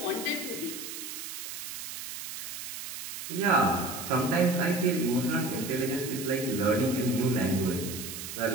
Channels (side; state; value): right; noise; hiss, 8 dB below the sound